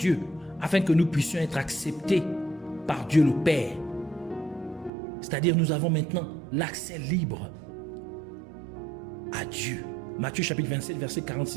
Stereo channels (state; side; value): drops out; left; at 4.9 s